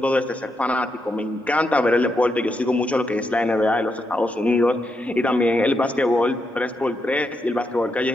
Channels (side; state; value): both; normal; correlation 0.82